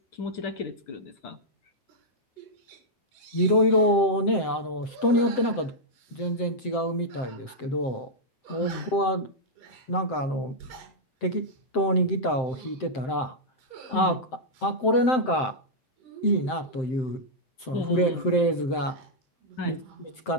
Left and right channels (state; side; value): late; right; 7.7 ms